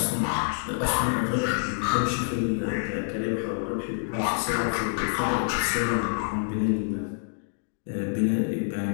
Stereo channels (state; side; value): silent; right; digital silence